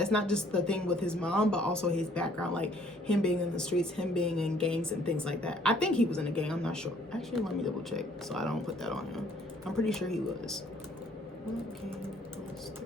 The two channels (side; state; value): both; normal; correlation 0.61